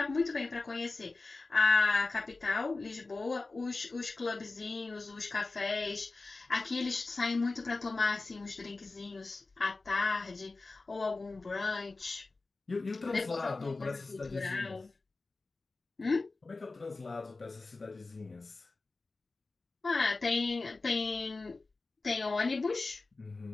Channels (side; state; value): right; quieter; 3.6 dB